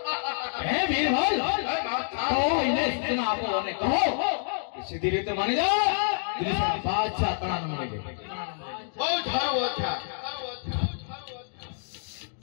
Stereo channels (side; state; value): right; silent; digital silence